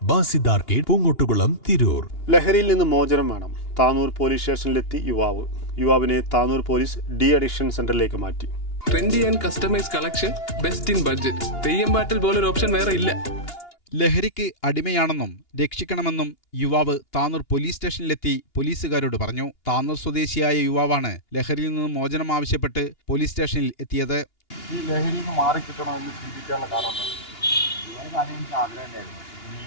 Basid arcade, Poongottukulam, Tirur. ലഹരിയിൽ നിന്ന് മോചനം വേണം. താനൂർ പോലീസ് സ്റ്റേഷനിലെത്തി യുവാവിനെ താനൂർ പോലീസ് ഡി അഡിക്ഷൻ സെന്ററിലേക്ക് മാറ്റി. Trendy and customise collection, best in budget. Theyyam പാട്ടിൽ പോലൊരു ഓപ്ഷൻ വേറെ ഇല്ല. ലഹരിക്ക് അടിമയാണെന്നും രക്ഷിക്കണമെന്നും യുവാവ് താനൂർ പോലീസ് സ്റ്റേഷനിലെത്തി പോലീസുകാരോട് പറഞ്ഞു. താനൂർ സ്വദേശിയായ യുവാവാണ് ലഹരിയിൽ നിന്ന് മോചനം ആവശ്യപ്പെട്ട് പോലീസ് സ്റ്റേഷനിൽ എത്തിയത്. ഈ ലഹരിയിൽ നിന്ന് മാറിക്കിട്ടണമെന്ന് ചിന്തിക്കാനുള്ള കാരണം ഒരുപാട് കാര്യം എനിക്ക് ആഗ്രഹം ഉണ്ടായിരുന്നു.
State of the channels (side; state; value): right; late; 2.8 ms